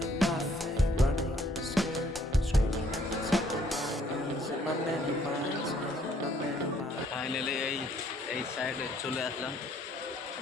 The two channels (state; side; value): normal; both; correlation 0.64